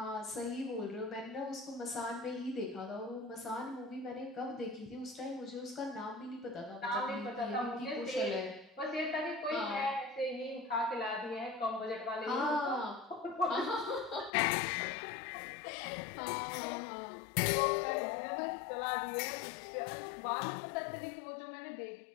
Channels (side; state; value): right; drops out; at 14.3 s